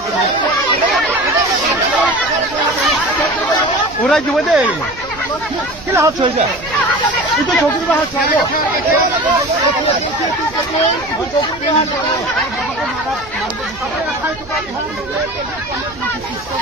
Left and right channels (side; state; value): right; noise; hum, 20 dB below the sound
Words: ওৰাই জীবনে কি হাত হয়েছে কিন্তু চকুৰ হাত চাইব